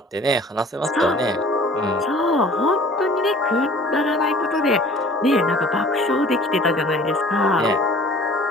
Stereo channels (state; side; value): normal; both; correlation 0.48